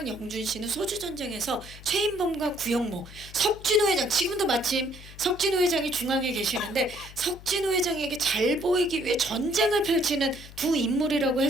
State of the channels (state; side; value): noise; left; hum, 17 dB below the sound